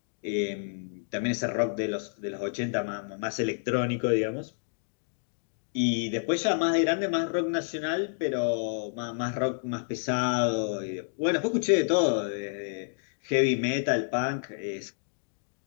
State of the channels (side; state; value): right; silent; digital silence